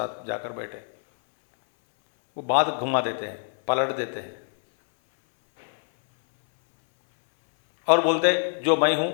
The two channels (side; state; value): right; silent; 62 dB below the other